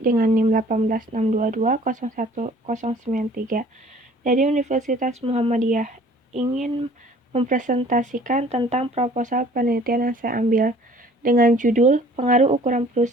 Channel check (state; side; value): normal; both; correlation 0.52